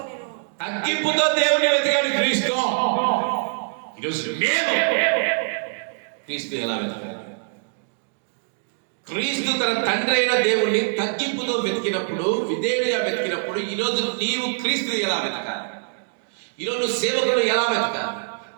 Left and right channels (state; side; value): silent; left; digital silence